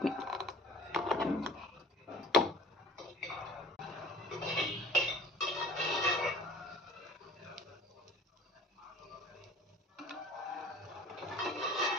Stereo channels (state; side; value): normal; both; correlation 0.46